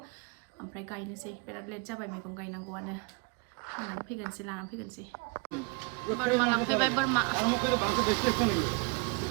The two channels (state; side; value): quieter; left; 30.9 dB